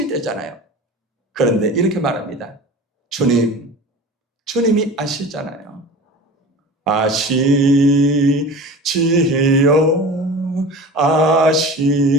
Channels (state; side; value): normal; both; correlation 0.36